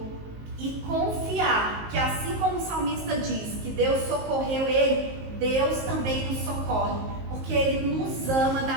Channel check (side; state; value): left; late; 19 ms